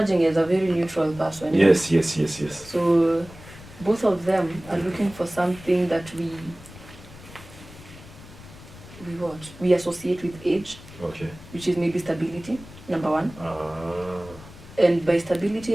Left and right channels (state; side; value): noise; left; rumble, 18 dB below the sound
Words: as a very neutral person. Yes. So both of them are looking for something that we associate with age, which is maybe stability, number one. And by